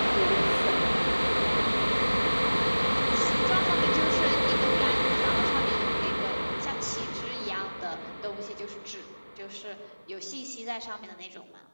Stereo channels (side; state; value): both; inverted; correlation -1.00